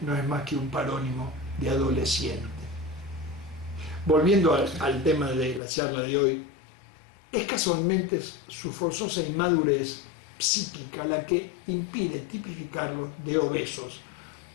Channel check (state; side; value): drops out; right; at 5.6 s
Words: no es más que un parónimo de adolescente. Volviendo al tema de la charla de hoy, es casualmente su forzosa inmadurez psíquica la que impide tipificarlos de obesos,